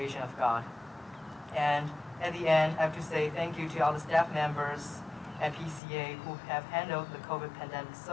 of God. And at the end, I have to say thank you to all the staff members at PCA who have handled the COVID pandemic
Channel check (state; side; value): drops out; right; at 5.8 s